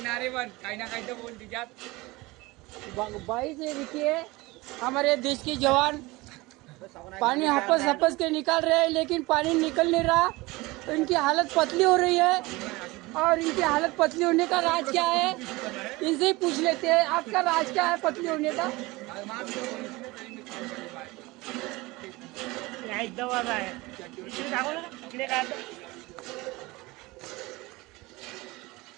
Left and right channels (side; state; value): left; quieter; 21.9 dB